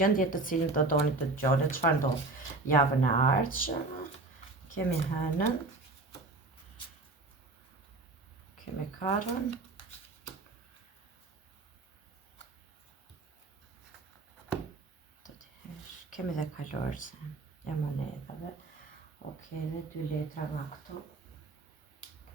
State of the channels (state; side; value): quieter; left; 3.3 dB